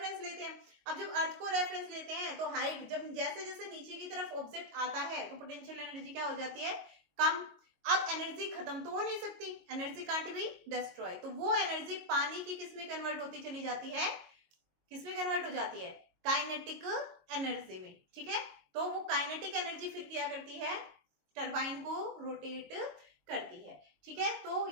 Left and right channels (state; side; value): late; left; 22 ms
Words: लेते हैं। अब जब अर्थ को रेफरेंस लेते हैं तो हाइट, जब जैसे जैसे नीचे की तरफ ऑब्जेक्ट आता है तो पोटेंशियल एनर्जी क्या हो जाती है, कम। अब एनर्जी खत्म तो हो नहीं सकती, एनर्जी कांट बी डिस्ट्रॉय, तो वो एनर्जी पानी की किस में कन्वर्ट होती चली जाती है, किस में कन्वर्ट हो जाती है, काइनेटिक एनर्जी में। ठीक है, तो वो काइनेटिक एनर्जी फिर क्या करती है, टरबाइन को रोटेट करती है। ठीक है, तो